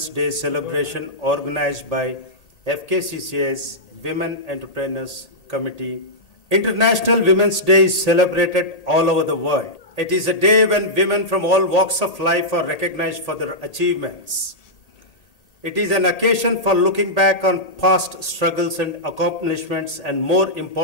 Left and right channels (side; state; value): right; late; 1.8 ms